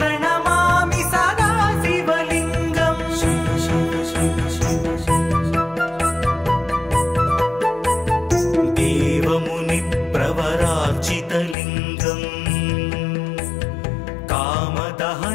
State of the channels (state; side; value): drops out; right; at 11.6 s